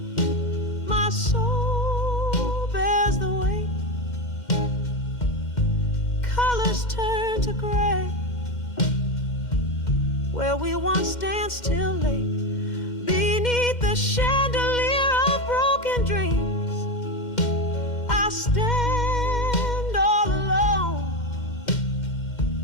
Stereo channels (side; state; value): right; late; 2.1 ms